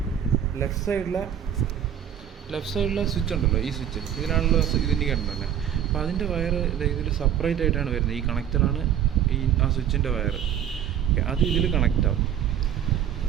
ലെഫ്റ്റ് സൈഡിലെ സ്വിച്ച് ഉണ്ടല്ലോ, ഈ സ്വിച്ച് ഇതിനാണല്ലോ ഇത് ഇൻഡിക്കേറ്റർ തന്നെ. അപ്പോൾ അതിൻ്റെ വയർ ഇതിൽ സെപ്പറേറ്റ് ആയിട്ടാണ് വരുന്നത്. ഈ കണക്ടറാണ് ആ സ്വിച്ചിൻ്റെ വയർ. ഓക്കെ, അത് ഇതിൽ കണക്റ്റ് ആവും.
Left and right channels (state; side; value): quieter; left; 9.7 dB